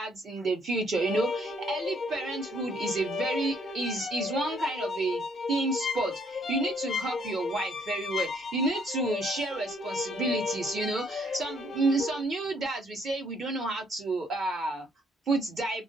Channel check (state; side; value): normal; both; correlation 0.67